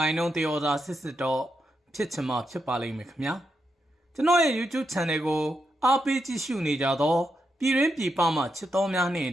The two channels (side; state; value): both; normal; correlation 0.84